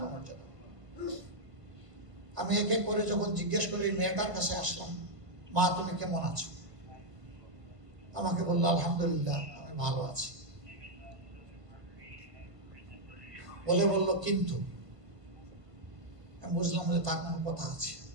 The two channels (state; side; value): late; left; 1.5 ms